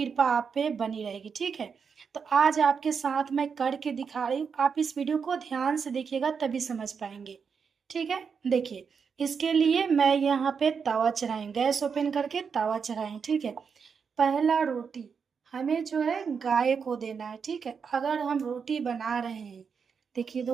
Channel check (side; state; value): left; quieter; 6.1 dB